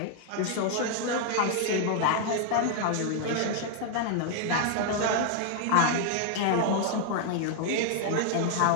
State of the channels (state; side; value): different; both; correlation 0.00